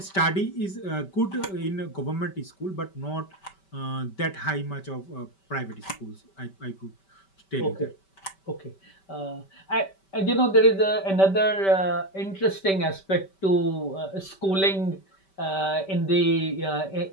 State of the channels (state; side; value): late; right; 5.2 ms